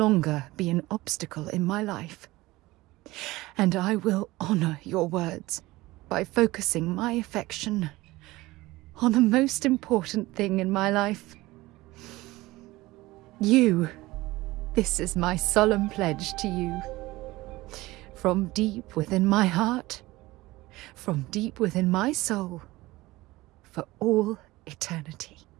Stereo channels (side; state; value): left; quieter; 19.4 dB